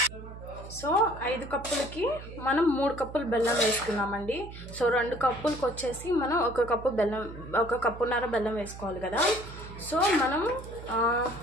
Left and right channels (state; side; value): noise; right; hum, 13 dB below the sound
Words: సో 5 కప్పులకి మనం 3 కప్పులు బెల్లం వేసుకున్నామండి. సో 2 కప్పులకు వచ్చేసి మనం 1 కప్పు బెల్లం, 1.5 కప్పు బెల్లం వేసుకోవాలి కదా. సో మనం